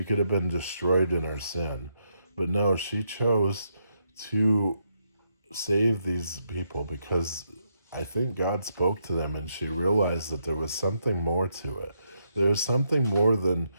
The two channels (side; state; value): both; inverted; correlation -0.79